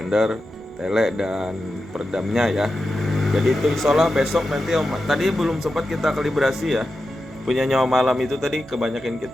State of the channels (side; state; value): both; normal; correlation 0.90